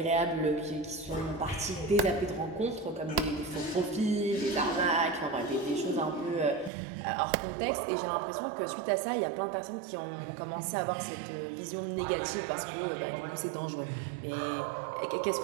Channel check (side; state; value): left; drops out; at 6.7 s